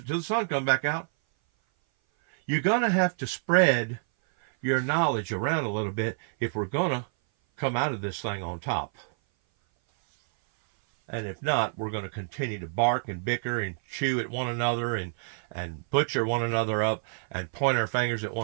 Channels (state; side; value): silent; left; 57 dB below the other